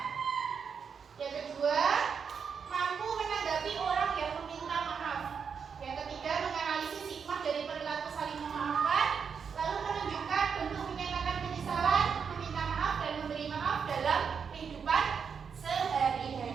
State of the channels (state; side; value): quieter; left; 6.4 dB